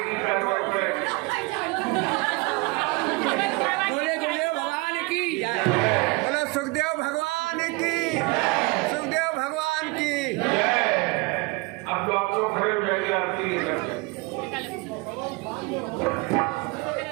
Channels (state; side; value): quieter; left; 25.9 dB